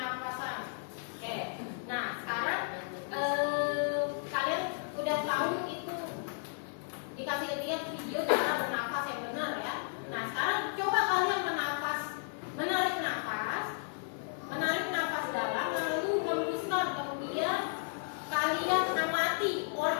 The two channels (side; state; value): right; silent; digital silence